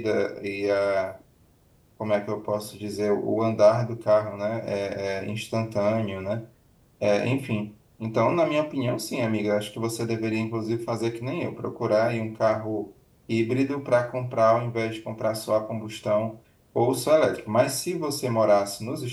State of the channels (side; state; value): both; identical; correlation 1.00